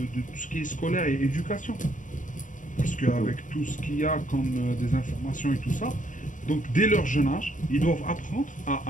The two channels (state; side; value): late; right; 0.37 ms